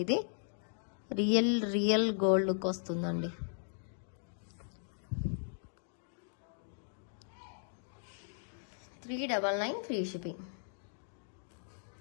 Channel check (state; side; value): silent; right; digital silence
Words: ఇది రియల్ గోల్డ్ లుక్ వస్తుందండి. $399 ఫ్రీ షిప్పింగ్.